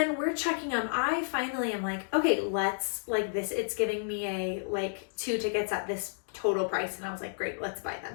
we're checking them. I finally am like, okay, let's, like this, it's giving me like 2 tickets at this total price. And I was like, great, let's buy them.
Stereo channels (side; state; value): right; silent; digital silence